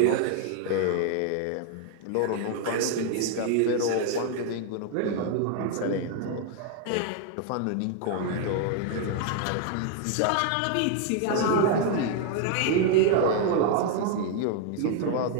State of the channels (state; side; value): different; both; correlation 0.00